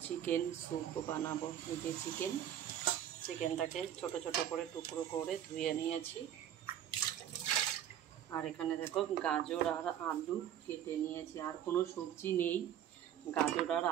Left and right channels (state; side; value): quieter; left; 10.4 dB